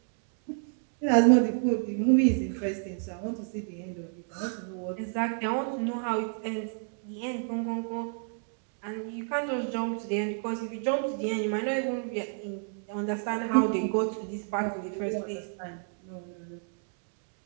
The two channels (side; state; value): left; silent; 58 dB below the other